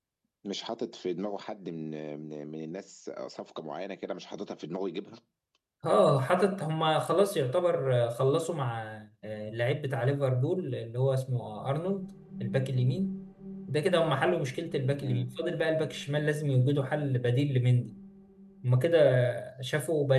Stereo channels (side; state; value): both; identical; correlation 1.00